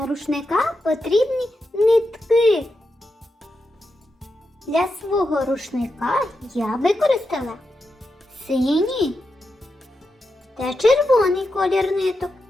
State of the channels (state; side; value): normal; both; correlation 0.87